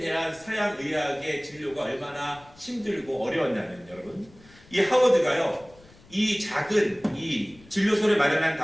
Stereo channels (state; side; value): noise; left; rumble, 25 dB below the sound